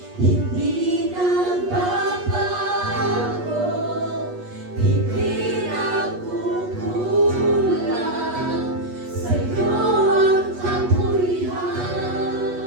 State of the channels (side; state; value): left; late; 8.3 ms